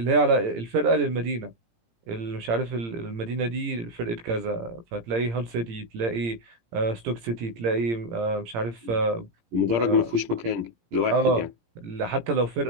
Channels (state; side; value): late; left; 17 ms